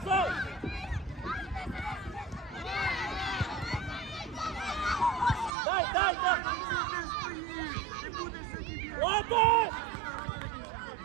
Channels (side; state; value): left; drops out; at 5.5 s